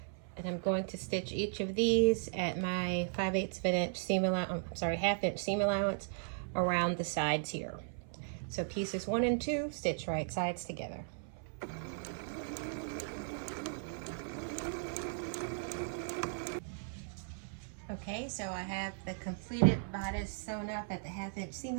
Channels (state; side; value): silent; left; 53 dB below the other